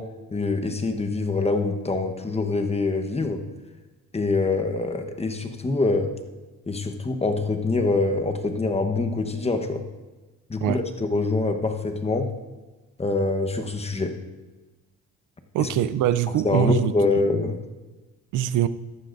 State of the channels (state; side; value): normal; both; correlation 0.49